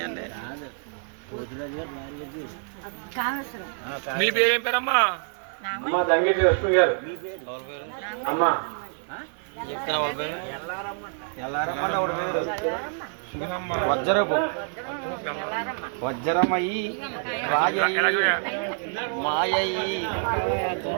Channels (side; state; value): left; silent; 56 dB below the other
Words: అండి। మీ పేరేం పేరమ్మా? అమ్మ దంగేటి లక్ష్మి గారు, అమ్మ వజ్రపు వజ్రమయ్యి రాజయ్యి మాయయ్యి